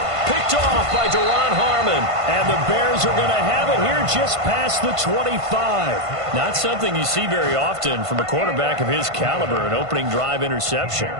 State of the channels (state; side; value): late; left; 1.5 ms